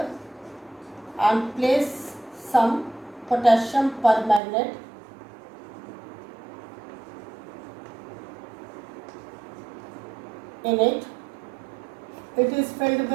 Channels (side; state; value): left; drops out; at 4.4 s